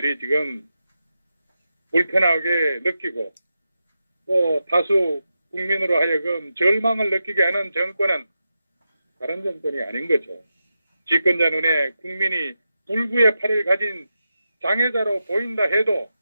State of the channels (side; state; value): both; inverted; correlation -0.89